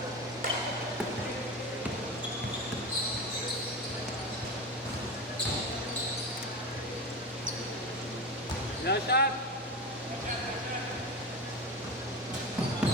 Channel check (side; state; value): both; normal; correlation 0.23